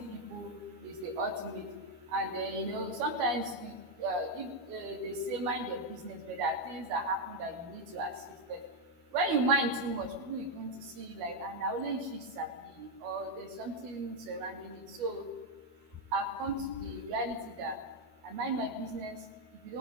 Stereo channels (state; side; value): late; left; 12 ms